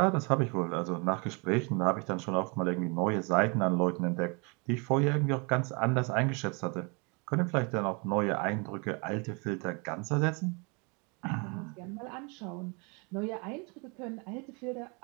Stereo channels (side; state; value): left; quieter; 32.0 dB